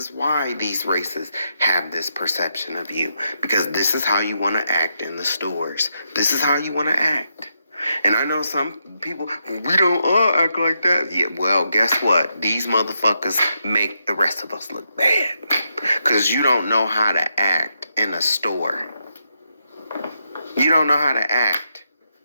these races have this perception of you. Because this is how you want to act in the stores. This is how you want to act. And I know some people, we don't all act like that. Yeah, well, guess what? These motherfuckers make the rest of us look bad. Because you don't know how to act in a store. You don't know how to act.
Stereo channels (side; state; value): both; inverted; correlation -0.82